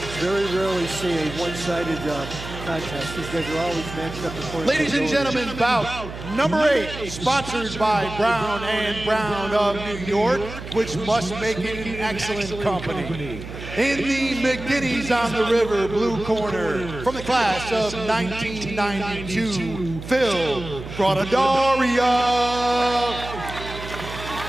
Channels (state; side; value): noise; right; hum, 11 dB below the sound